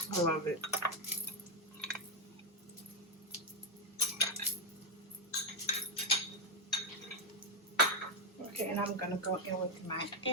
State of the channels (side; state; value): both; normal; correlation 0.05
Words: I love it. Okay, and I'm going to go in with my